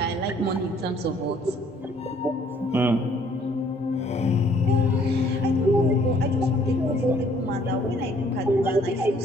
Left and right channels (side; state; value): both; normal; correlation 0.61